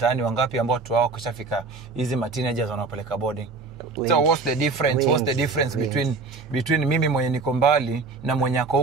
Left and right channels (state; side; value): quieter; left; 4.1 dB